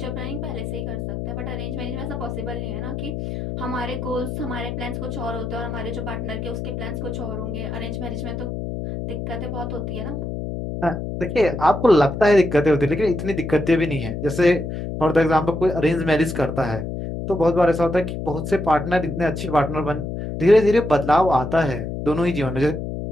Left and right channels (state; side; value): noise; left; hum, 5 dB below the sound